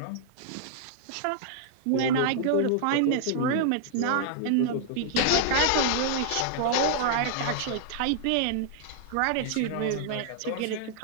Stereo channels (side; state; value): both; different; correlation -0.01